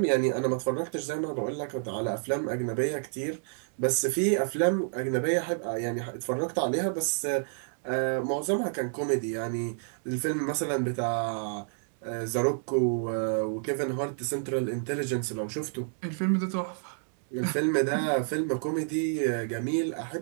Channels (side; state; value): left; silent; digital silence